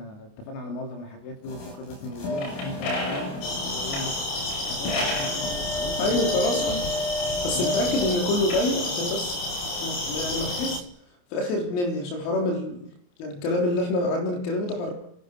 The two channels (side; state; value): right; late; 28 ms